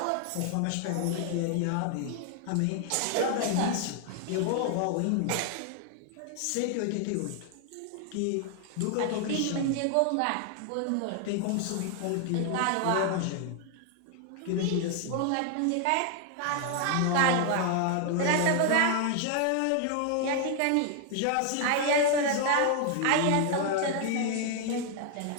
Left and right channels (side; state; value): both; different; correlation 0.00